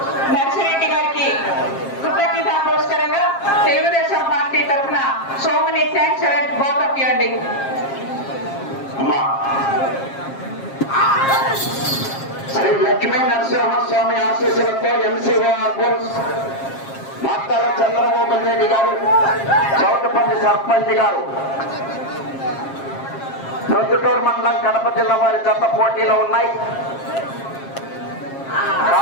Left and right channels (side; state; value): right; late; 7.4 ms